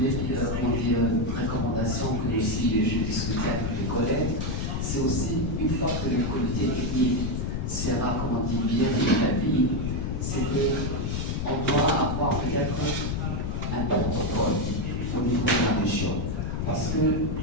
recommandation que aussi j'ai discuté avec les collègues, c'est aussi une fois que le comité technique sera bien établi, c'est qu'on doit avoir peut-être un protocole au niveau de la région. Parce que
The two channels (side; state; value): left; noise; rumble, 1 dB below the sound